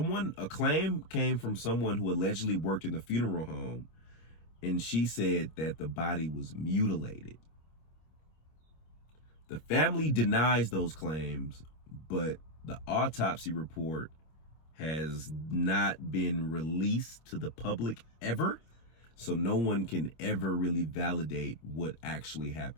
claim came from someone who allegedly worked in the funeral home, and she said that the body was mutilated. The family denies those claims, but the autopsy report has not been released to the public ever, so no one can ever really validate what actually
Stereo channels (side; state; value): right; late; 26 ms